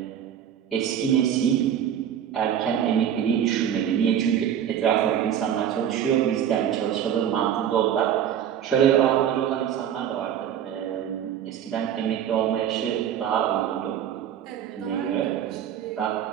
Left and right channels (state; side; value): quieter; left; 9.6 dB